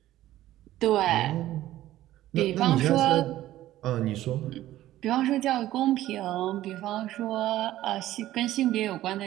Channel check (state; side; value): quieter; left; 14.4 dB